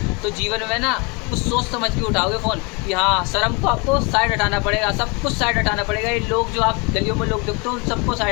तो जीवन में ना कुछ सोच समझ के उठाओगे फ़ोन कि हाँ शर्म को आपको साइड हटाना पड़ेगा, सब कुछ साइड हटाना पड़ेगा। ये लोग जो आप गलियों में लोग देखते हो उन सबको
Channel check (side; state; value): right; quieter; 30.0 dB